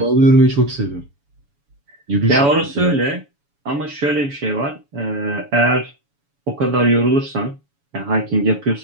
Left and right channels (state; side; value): late; left; 7.1 ms